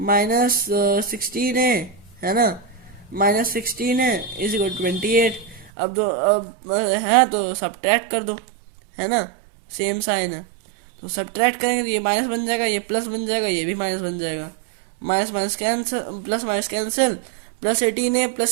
सिक्सटीन है ना, माइनस सिक्सटीन इज इक्वल 28। अब है तो सब्ट्रैक्ट कर दो, है ना, सेम साइन है, तो सब्ट्रैक्ट करेंगे तो ये माइनस बन जाएगा, ये प्लस बन जाएगा, ये भी माइनस बन जाएगा, minus minus cancel, plus minus cancel, plus eighteen A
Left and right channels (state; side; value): drops out; left; at 5.7 s